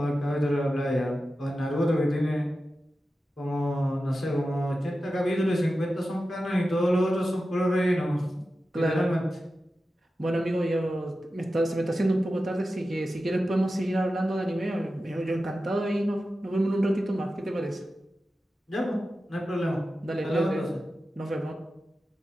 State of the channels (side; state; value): both; normal; correlation 0.93